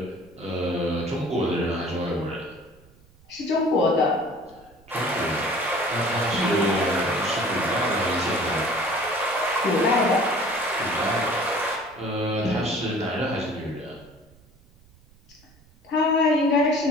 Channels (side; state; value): right; noise; rumble, 28 dB below the sound